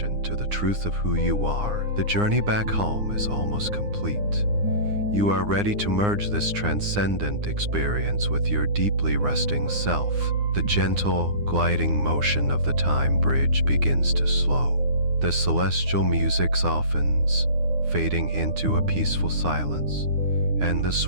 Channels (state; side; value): late; left; 9.7 ms